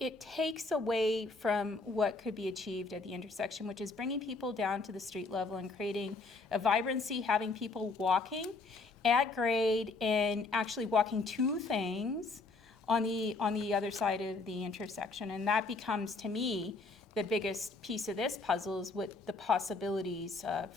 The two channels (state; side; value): quieter; right; 3.7 dB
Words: takes away from what could be achieved at the intersection, which is bringing people down to the street level and creating a vibrancy, having people walking at grade and actually walking to things on the other side of the intersection. And that becomes, to me, the biggest piece of this puzzle is what the possibilities